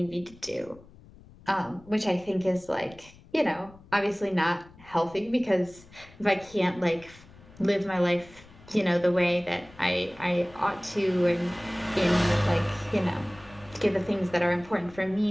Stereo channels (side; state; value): left; noise; rumble, 23 dB below the sound